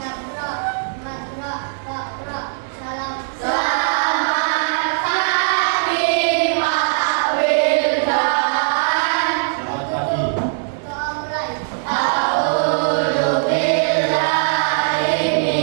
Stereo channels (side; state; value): left; silent; digital silence